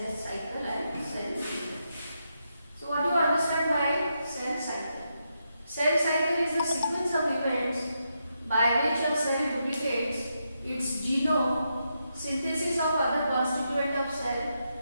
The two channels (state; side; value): inverted; both; correlation -0.83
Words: cycle and cell cycle. So what do you understand by cell cycle? Cell cycle is a sequence of events by which a cell duplicates its genome, synthesis of other constituent of cell,